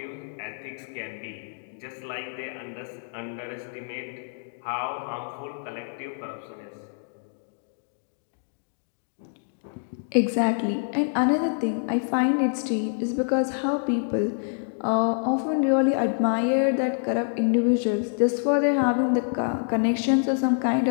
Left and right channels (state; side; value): silent; right; digital silence